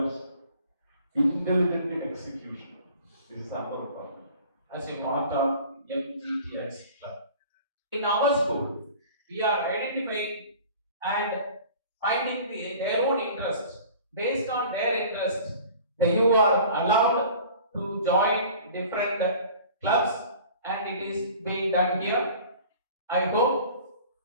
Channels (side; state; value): both; inverted; correlation -0.45